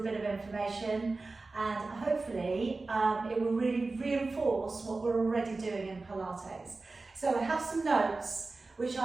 bit of information, and hopefully it will really reinforce what we're already doing in Pilates. So I have some notes which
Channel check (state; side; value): quieter; left; 3.6 dB